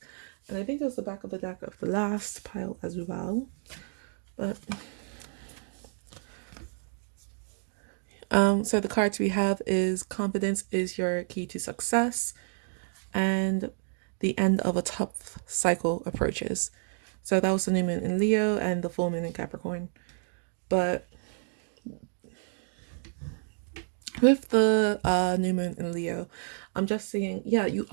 And I think it was the back of the deck of the last pile as well. But so the cards we have is confidence is your key to success. and the end of a tough cycle approaches. So that was the new moon in Leo and the full moon in Capricorn. But with the new moon in Leo, I'm just seeing, yeah, you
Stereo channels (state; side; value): silent; left; 58 dB below the other